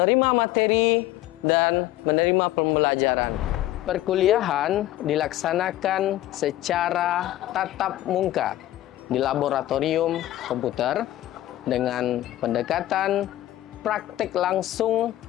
materi dan menerima pembelajaran. Perkuliahan dilaksanakan secara tatap muka di laboratorium komputer dengan pendekatan praktik langsung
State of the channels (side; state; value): right; quieter; 14.8 dB